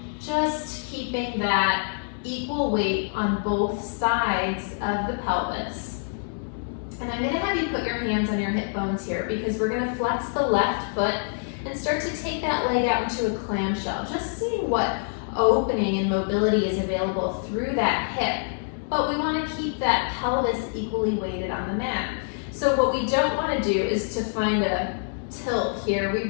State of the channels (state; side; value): silent; right; digital silence